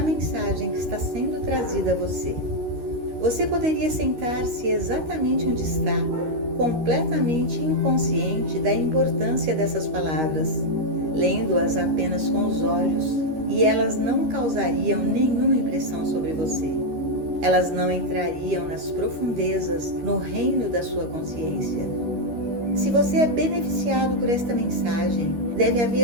que está sendo trazida a você. Você poderia sentar-se exatamente onde está, completamente inconsciente da importância dessas palavras, lendo-as apenas com os olhos, e elas não causariam nenhuma impressão sobre você. Elas não entrariam nas profundezas, no reino da sua consciência. Se você é beneficiado por esta mensagem, deve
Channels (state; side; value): late; left; 13 ms